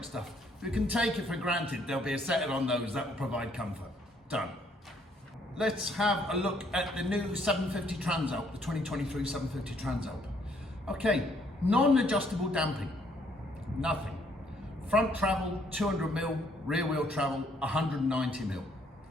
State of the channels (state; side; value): normal; both; correlation 0.67